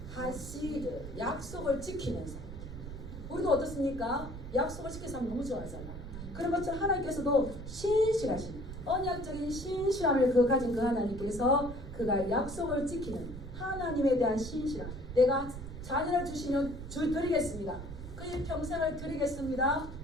하시드, 약속을 지키는 사람. 우리도 어떻습니까? 약속을 지키는 사람 너무 좋아하잖아. 그런 것처럼 하나님께서도 신실하신 언약적인 신실함을 가진 그 하나님께서 그가 약속을 지키는 하나님에 대한 신실함. 내가 자녀를 주시면 드리겠습니다. 그의 평생을 드리겠습니다.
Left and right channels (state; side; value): noise; right; rumble, 10 dB below the sound